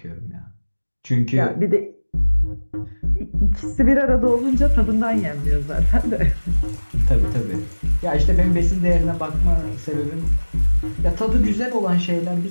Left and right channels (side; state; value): both; inverted; correlation -1.00